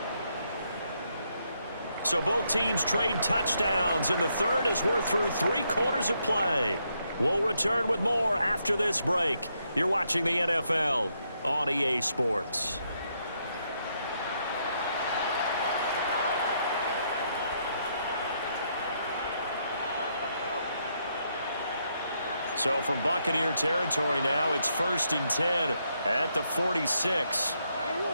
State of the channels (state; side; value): inverted; both; correlation -0.77